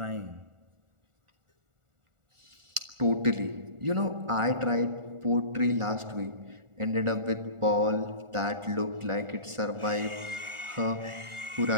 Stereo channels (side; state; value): left; late; 1.4 ms